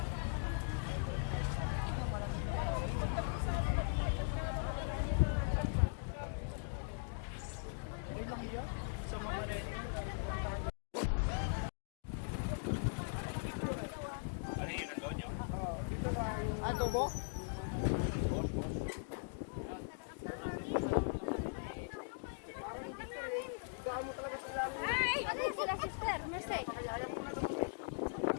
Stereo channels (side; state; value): right; silent; digital silence